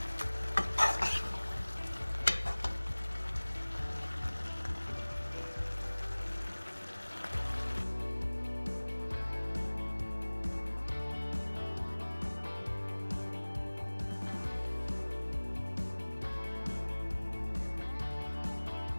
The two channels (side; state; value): both; inverted; correlation -1.00